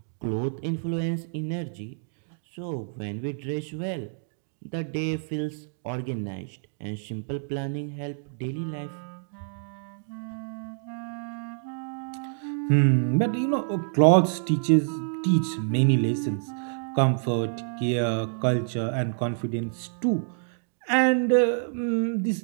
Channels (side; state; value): left; silent; digital silence